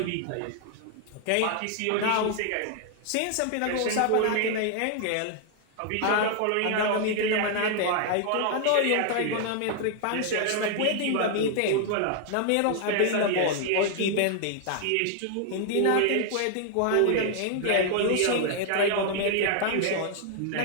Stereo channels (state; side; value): different; both; correlation 0.00